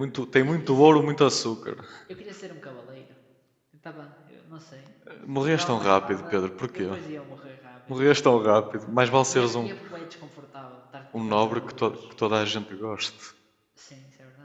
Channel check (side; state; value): both; identical; correlation 1.00